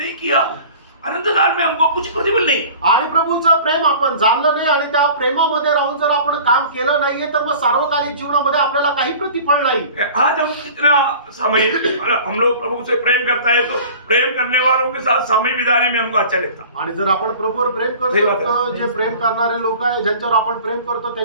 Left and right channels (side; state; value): both; inverted; correlation -0.43